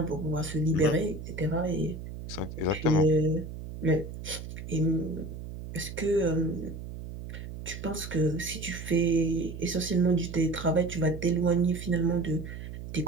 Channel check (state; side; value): noise; right; hum, 10 dB below the sound